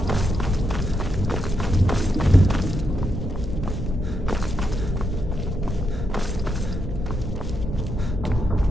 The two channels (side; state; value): both; normal; correlation 0.81